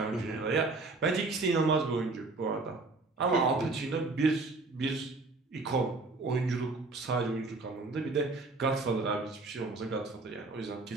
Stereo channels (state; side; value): quieter; left; 3.5 dB